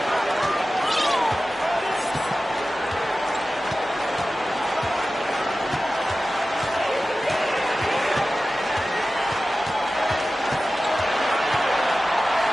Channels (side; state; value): both; normal; correlation 0.95